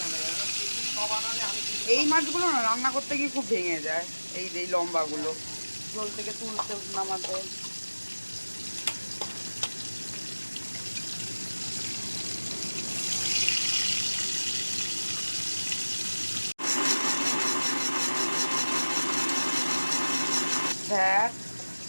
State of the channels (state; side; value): inverted; both; correlation -1.00